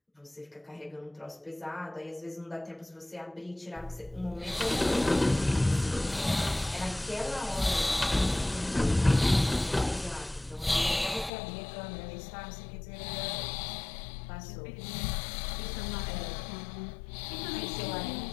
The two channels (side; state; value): right; drops out; at 11.3 s